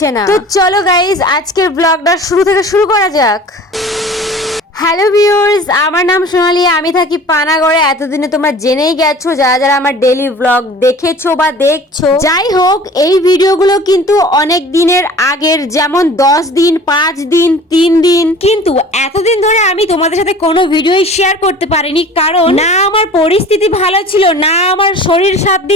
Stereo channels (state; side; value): normal; both; correlation 0.44